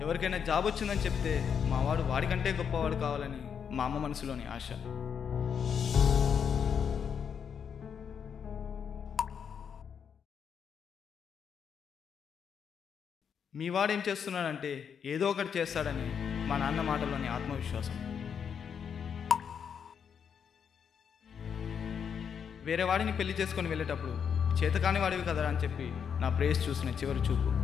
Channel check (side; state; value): right; quieter; 7.3 dB